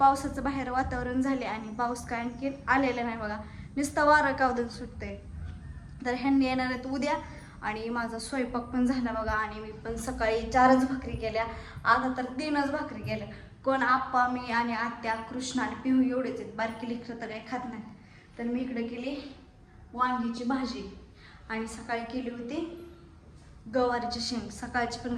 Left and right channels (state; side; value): identical; both; correlation 1.00